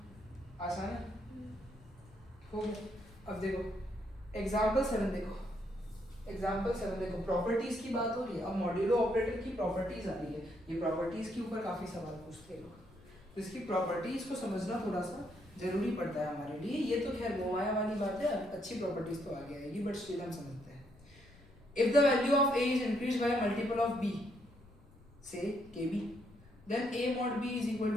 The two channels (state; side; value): noise; left; rumble, 25 dB below the sound